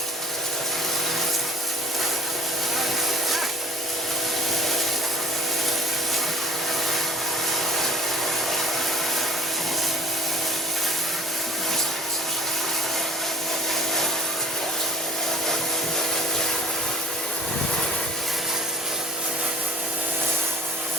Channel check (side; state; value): both; normal; correlation 0.49